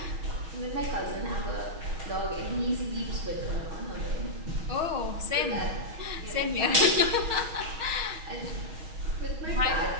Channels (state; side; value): late; left; 6.3 ms